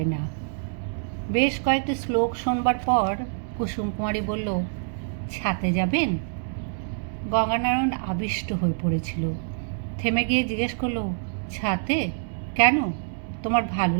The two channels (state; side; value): silent; left; digital silence